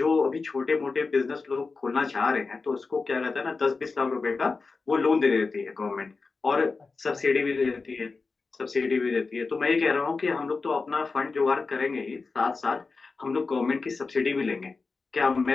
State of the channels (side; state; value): right; quieter; 4.2 dB